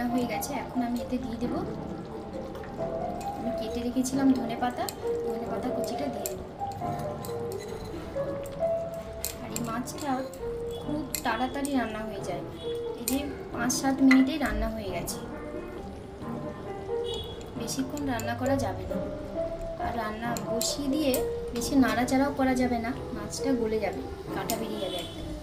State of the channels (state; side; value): identical; both; correlation 1.00